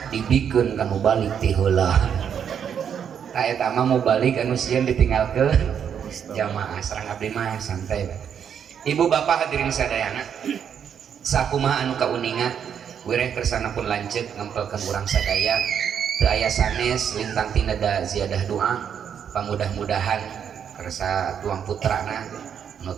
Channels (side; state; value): left; quieter; 8.1 dB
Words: dibikeun kanu balik ti heula. Ta eta mah mau balik anu sieun ditinggalkeun jamaah. Sareng abdi mah santai Pak. Ibu bapak hadirin sadayana, sakumaha anu kauningan wireh kersana pun lanjut ngempelkeun urang sadaya. Teu aya sanes lintang tinada ziyadah doa pamudah-mudahan kersa tuang putrana